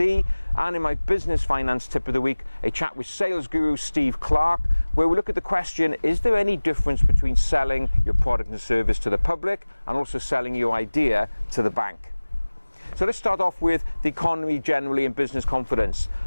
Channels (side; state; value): both; inverted; correlation -1.00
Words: and in my business finance tip of the week, a chat with sales guru Steve Clarke, where we look at the question, is there any difference between selling your product and service to the public and also selling your idea to the bank? So let's start off with the economy generally and business confidence.